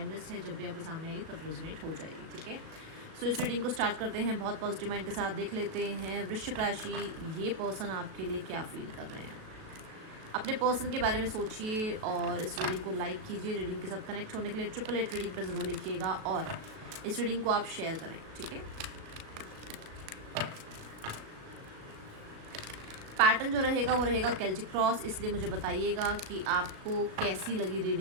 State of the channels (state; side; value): late; left; 37 ms